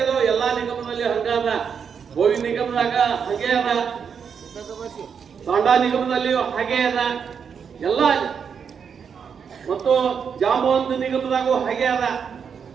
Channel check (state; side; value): quieter; left; 6.8 dB